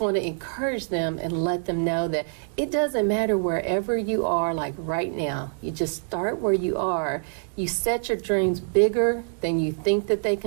to encourage them and let them know that it doesn't matter wherever you are, like right now. You just start where you are. You set your dreams bigger than you think that they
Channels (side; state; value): left; silent; digital silence